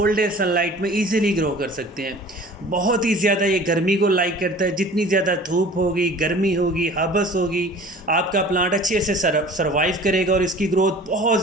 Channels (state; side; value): normal; both; correlation 0.45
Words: डे सनलाइट में इजीली ग्रो कर सकते हैं। बहुत ही ज़्यादा ये गर्मी को लाइक करता है। जितनी ज़्यादा धूप होगी, गर्मी होगी, हबस होगी, आपका प्लांट अच्छे से सर्वाइव करेगा और इसकी ग्रोथ बहुत